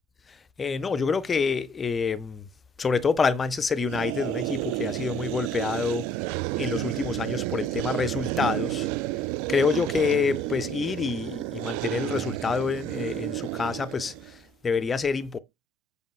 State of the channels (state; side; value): normal; both; correlation 0.61